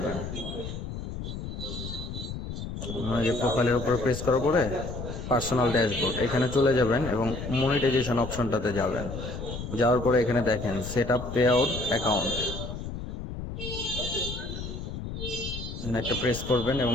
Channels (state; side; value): noise; left; rumble, 7 dB below the sound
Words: যে প্রোফাইলের উপর প্রেস করার পরে পার্সোনাল ড্যাশবোর্ড এখানে চলে যাবেন এবং মনিটাইজেশন অপশনটাতে যাবেন। যাওয়ার পরে এখানে দেখেন set up pay out account, একটা প্রেস করবেন এবং